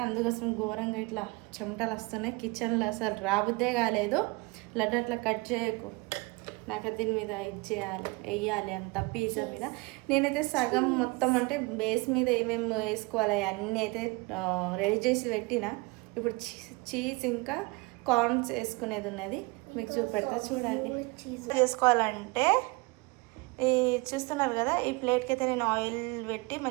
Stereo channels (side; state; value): left; quieter; 26.1 dB